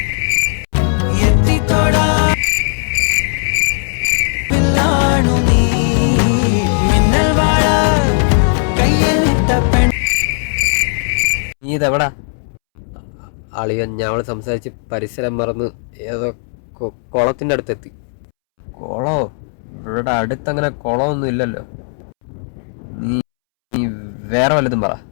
നീ ഇതെവിടാ? അളിയൻ ഞങ്ങൾ സംസാരിച്ച് പരിസരം മറന്ന് ഏതോ കുളത്തിൻ്റെ അടുത്തെത്തി. കുളോ? ഇവിടെ അടുത്തങ്ങനെ കുളമൊന്നും ഇല്ലല്ലോ. നീ വേറെ വല്ലതും പറ.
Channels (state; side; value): silent; right; 69 dB below the other